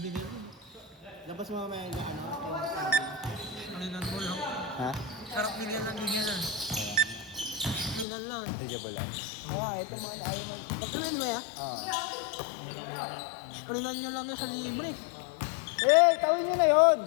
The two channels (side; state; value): right; drops out; at 8.1 s